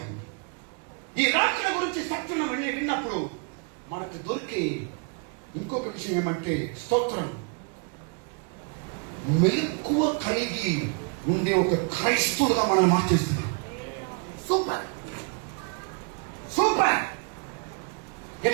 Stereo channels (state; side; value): quieter; left; 35.2 dB